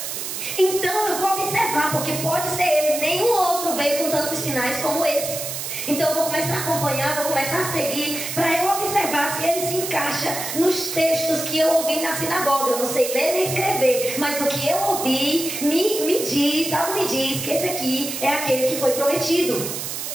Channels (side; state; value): right; noise; hiss, 5 dB below the sound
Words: Então eu vou observar, porque pode ser ele, nenhum outro veio com tantos sinais como esse. Então eu vou começar a acompanhar, vou começar a seguir, para eu observar se ele se encaixa nos textos que eu ouvi na sinagoga. Eu não sei ler nem escrever, mas o que eu ouvi me diz, algo me diz que esse aqui é aquele que foi prometido.